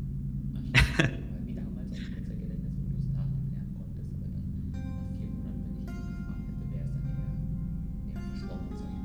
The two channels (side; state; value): both; identical; correlation 1.00